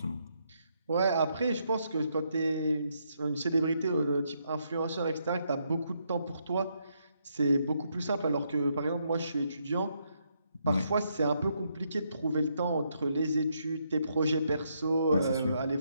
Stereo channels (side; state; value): both; inverted; correlation -0.77